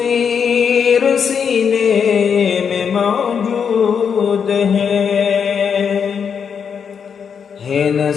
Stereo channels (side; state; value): right; quieter; 6.9 dB